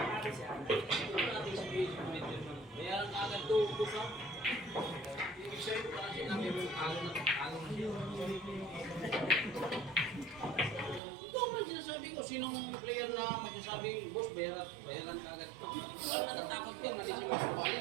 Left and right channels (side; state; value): left; drops out; at 11.0 s